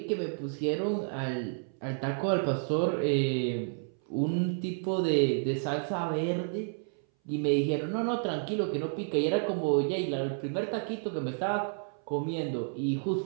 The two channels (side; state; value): left; silent; 57 dB below the other